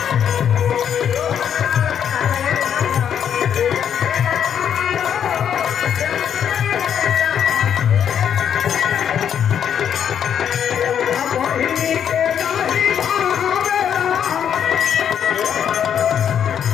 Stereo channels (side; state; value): right; quieter; 8.7 dB